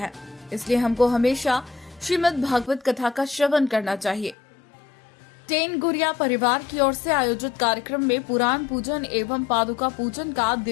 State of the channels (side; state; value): right; drops out; at 4.4 s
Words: इसलिए हमको हमेशा श्रीमद् भागवत कथा का श्रवण करना चाहिए। टेन गुरिया परिवार की ओर से आयोजित कार्यक्रम में पुराण पूजन एवं पादुका पूजन का